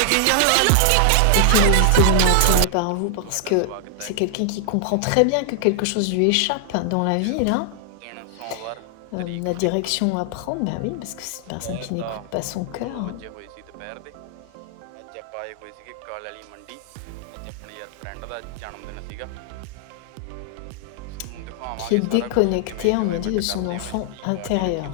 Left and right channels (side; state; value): both; different; correlation 0.00